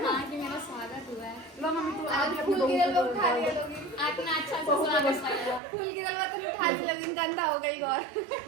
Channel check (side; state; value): left; drops out; at 5.6 s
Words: हाँ कि मेरा स्वागत हुआ है। लो मम्मी तू आप फूल गिरल में उठा लिया लोगी। इतना अच्छा से स्वागत किया। फूल गिरल में तो उठा लिया लोगी। गंदा हो गई और